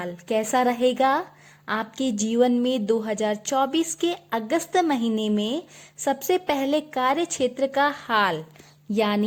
कैसा रहेगा आपके जीवन में 2024 के अगस्त महीने में? सबसे पहले कार्य क्षेत्र का हाल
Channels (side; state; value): both; identical; correlation 1.00